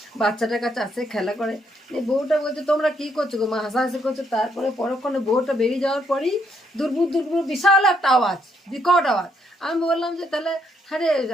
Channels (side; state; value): both; normal; correlation 0.73